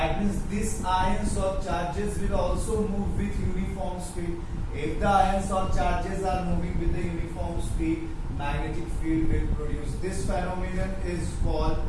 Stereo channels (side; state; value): both; identical; correlation 1.00